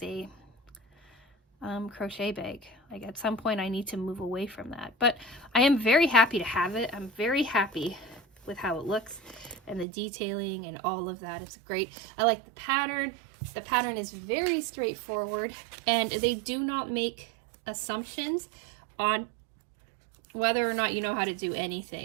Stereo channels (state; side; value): drops out; left; at 9.9 s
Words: a crochet bag. Like at some point I need to move away from that, but I am very happy to have it. I'm very happy with how it looks and the detailing and all of that. It's great. I like the pattern. The pattern is very straightforward, and they do not make assumptions on whether or not you know how to do